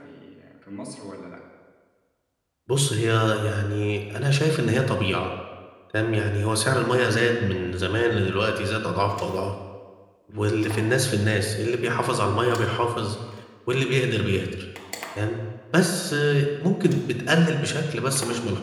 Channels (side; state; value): both; identical; correlation 1.00